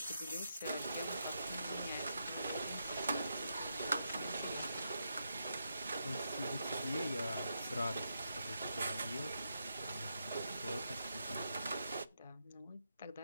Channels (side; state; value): both; inverted; correlation -0.83